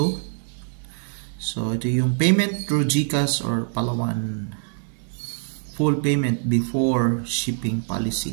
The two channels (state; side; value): silent; left; 62 dB below the other